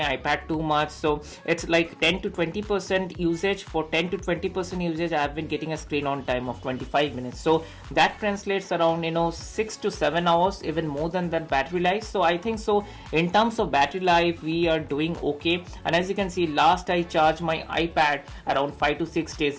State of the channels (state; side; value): identical; both; correlation 1.00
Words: iPad too much. So it's like 10 to 20% usage. For 10 to 20% usage, I have been getting a screen on time of 25 minutes. So that translates around 6 to 7 hours, even more than that battery life. So I think so in terms of battery life, we are doing okay. And as you can see, last I charged my iPad around 5 to 6 days